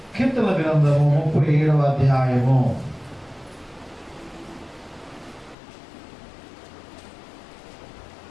కీర్తన గ్రంథము 37వ అధ్యాయము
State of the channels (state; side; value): drops out; right; at 5.6 s